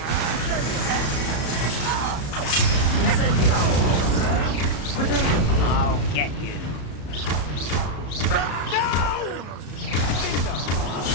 I'll get you.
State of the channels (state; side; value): late; right; 34 ms